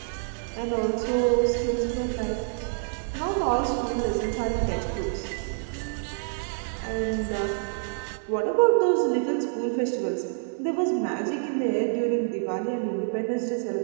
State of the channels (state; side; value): silent; left; digital silence